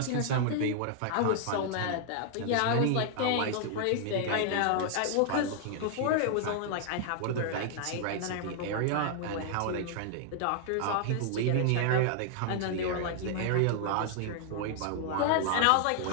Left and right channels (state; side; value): different; both; correlation 0.00